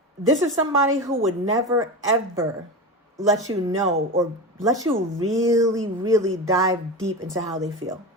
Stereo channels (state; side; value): normal; both; correlation 0.24